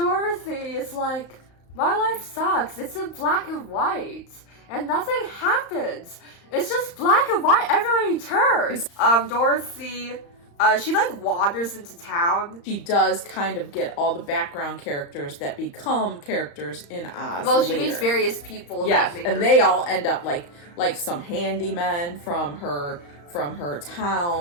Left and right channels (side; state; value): right; late; 35 ms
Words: is like, my life sucks. It's in black and white. And nothing happens. It's just black and white everywhere you turn. Dorothy, she like wanders into town. She does kind of get all the background characters that become characters in Oz. Well, she meets various people. Yes, and they all end up like some handymen from her